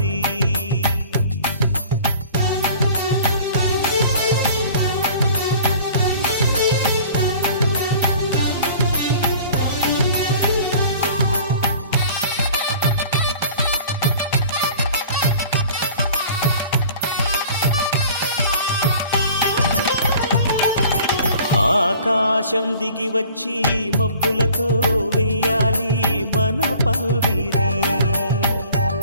ఆకాశం దిగి వచ్చి మబ్బులతో వెయ్యాలి మన పందిరి.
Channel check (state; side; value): inverted; both; correlation -0.47